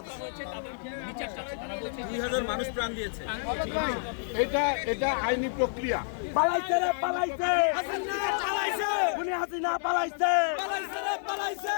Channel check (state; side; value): silent; right; digital silence